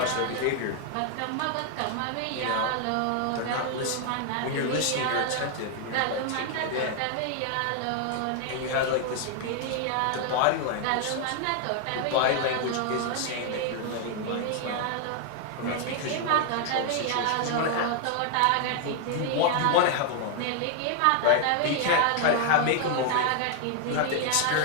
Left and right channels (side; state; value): both; different; correlation 0.00